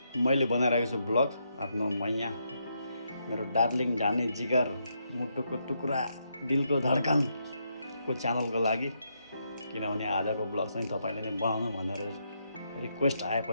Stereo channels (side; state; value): both; inverted; correlation -0.79